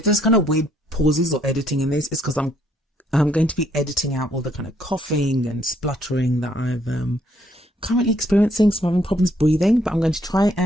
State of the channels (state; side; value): normal; both; correlation 0.69